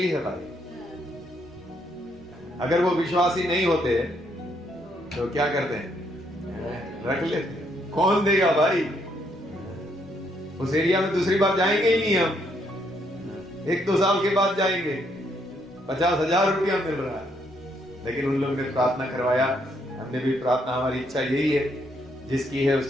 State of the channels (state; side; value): normal; both; correlation 0.73